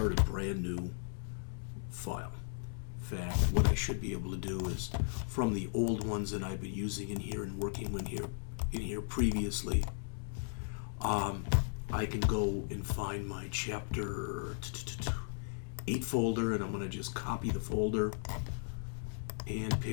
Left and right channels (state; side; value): silent; right; digital silence